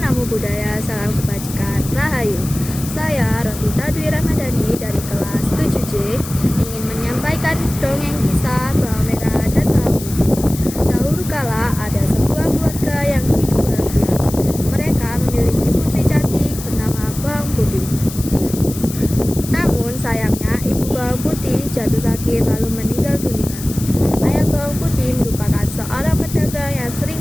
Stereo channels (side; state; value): left; noise; hiss, 12 dB below the sound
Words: Namo Buddhaya, salam kebajikan, Rahayu. Saya Rosita Dwi Ramadhani dari kelas 7C ingin menyampaikan dongeng kisah Bawang Merah dan Bawang Putih. Dahulu kala ada sebuah keluarga yang hidup bahagia. Mereka memiliki putri cantik bernama Bawang Putih. Namun sayangnya ibu Bawang Putih jatuh sakit lalu meninggal dunia. Ayah Bawang Putih merupakan seorang pedagang yang